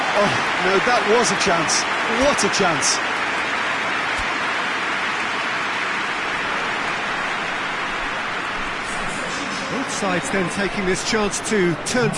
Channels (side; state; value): both; identical; correlation 1.00